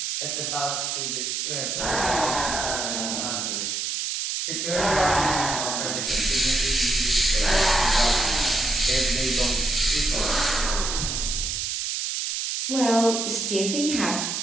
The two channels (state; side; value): noise; right; hiss, 2 dB below the sound